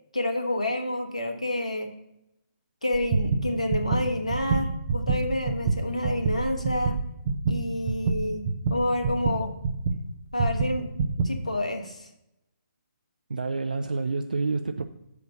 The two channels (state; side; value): inverted; both; correlation -0.79